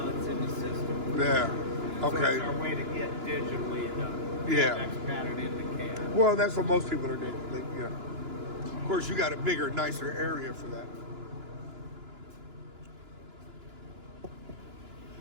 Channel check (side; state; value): left; late; 2.9 ms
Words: it's in the system. Yeah. So Okay. it's our way to get digitally the Camex pattern in the cam. Well, that's what most people are doing. Of course, you got a bigger, nicer area for that.